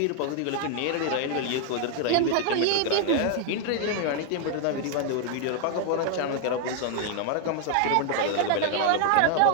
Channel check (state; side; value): different; both; correlation 0.00